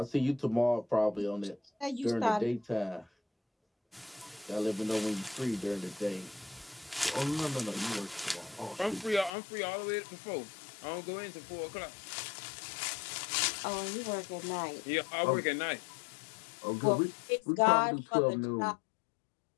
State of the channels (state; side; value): drops out; right; at 9.3 s